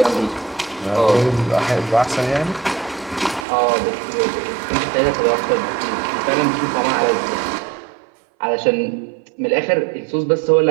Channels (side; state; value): left; drops out; at 3.5 s